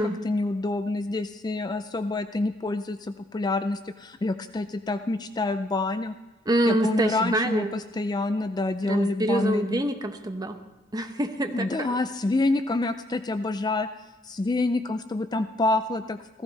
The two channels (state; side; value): normal; both; correlation 0.70